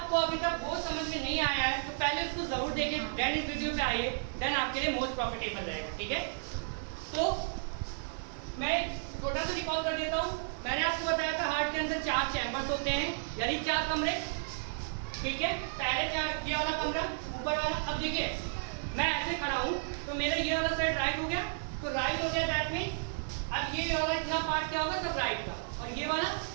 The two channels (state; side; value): silent; left; digital silence